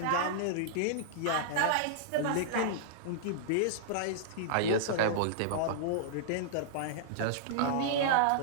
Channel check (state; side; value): different; both; correlation -0.02